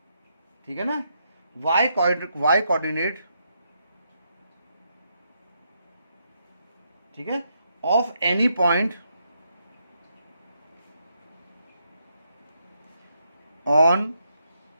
ठीक है ना, y कोऑर्डिनेट, ठीक है, of any point on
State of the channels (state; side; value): inverted; both; correlation -0.79